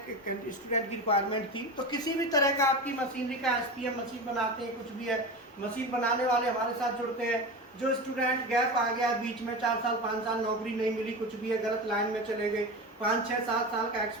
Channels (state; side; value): normal; both; correlation 0.25